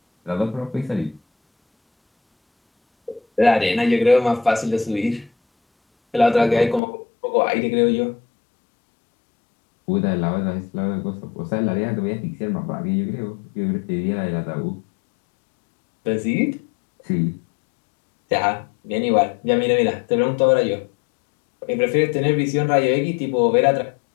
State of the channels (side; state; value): right; drops out; at 6.8 s